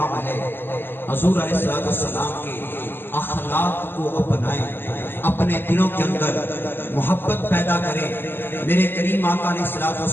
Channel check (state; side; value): late; right; 0.099 ms